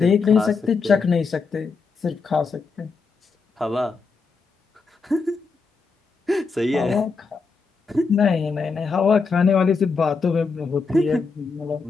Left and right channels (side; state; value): right; quieter; 4.7 dB